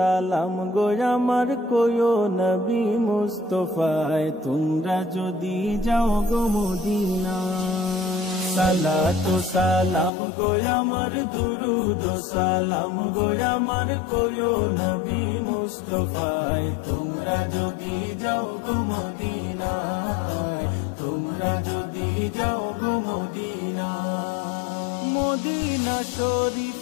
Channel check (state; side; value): drops out; right; at 10.1 s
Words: গো আমার কোয়ো নবী মুস্তাফায় তোমরা যদি যাও গো মদিনা। সালাতু সালাম গো আমার দুরুদ সালাম গো আমার কোয়ো নবী মুস্তাফায় তোমরা যদি যাও গো মদিনায়, তোমরা যদি যাও গো মদিনা। মদিনা